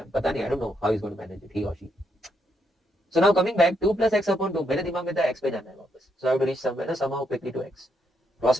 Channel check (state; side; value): normal; both; correlation 0.77